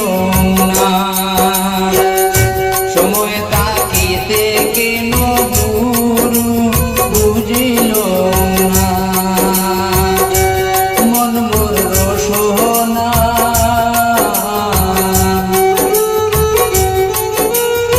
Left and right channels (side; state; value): both; identical; correlation 1.00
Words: না সময় তাকিতে কেন গুরু বুঝিল না মন মোর রসনা